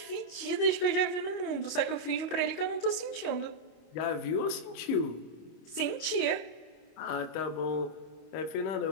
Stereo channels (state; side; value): late; right; 26 ms